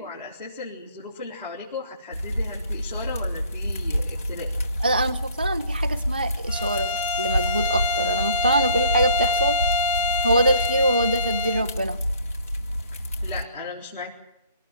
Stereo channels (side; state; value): both; inverted; correlation -0.56